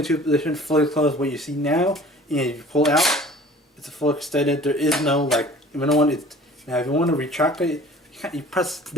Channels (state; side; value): normal; both; correlation 0.47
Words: 2 positions, fully closed. What you see now, and if you pull out, it's a full extended. There is no now if you want to retract it, you press